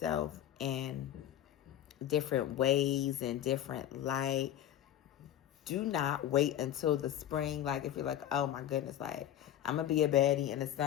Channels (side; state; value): right; quieter; 11.5 dB